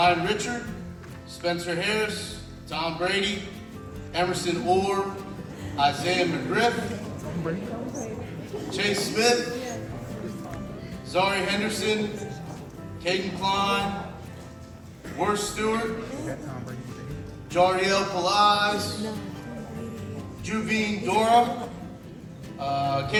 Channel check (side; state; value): both; identical; correlation 1.00